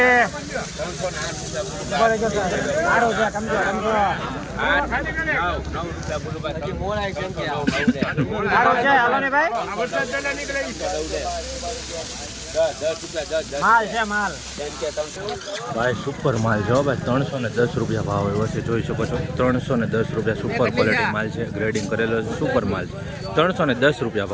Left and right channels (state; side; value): identical; both; correlation 1.00